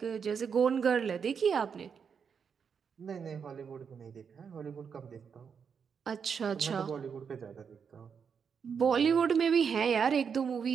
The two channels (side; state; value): left; quieter; 6.6 dB